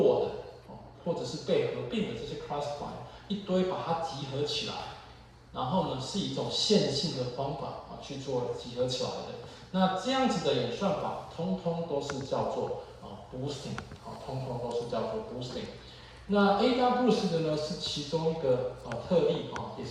的或者是被合并的这些 classifier 一堆把它集合起来，然后呢是一种线性的方法去做集合起来的。那这样子的演算法，通通都是叫做boosting， 通通都是叫做 boosting。那 AdaBoost 的呢是其中一个特例也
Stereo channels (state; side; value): identical; both; correlation 1.00